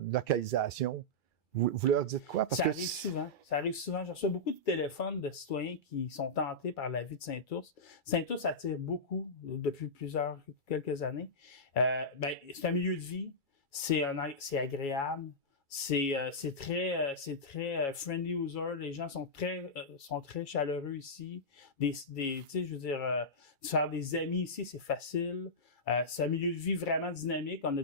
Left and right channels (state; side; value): late; right; 2.3 ms